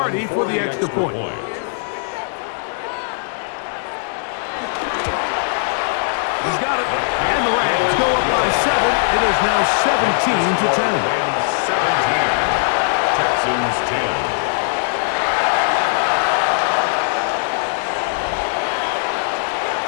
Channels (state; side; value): silent; right; digital silence